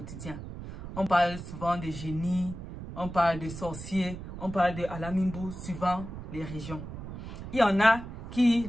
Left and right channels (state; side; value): noise; right; rumble, 10 dB below the sound